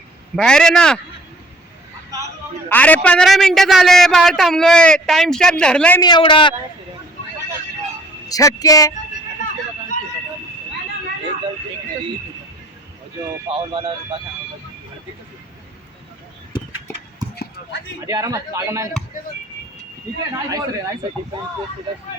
बाहेर आहे ना. अरे 15 मिनिटं झाले बाहेर थांबलोय, टाइम स्टॅम्प धरलाय मी एवढा. छक्के जो फाउल वाला आधी आरामात लागा नाही ठीक है, नाइस रे, नाइस है। डिफेंस को सीधा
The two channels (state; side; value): normal; both; correlation 0.56